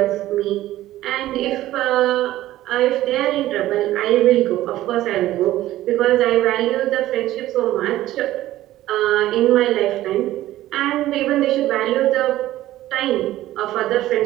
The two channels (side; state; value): left; quieter; 14.9 dB